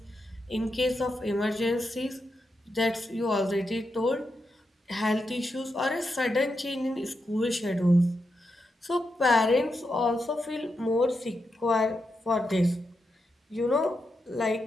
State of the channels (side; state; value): both; normal; correlation 0.86